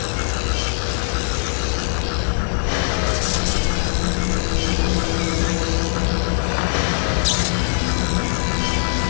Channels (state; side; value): silent; right; 59 dB below the other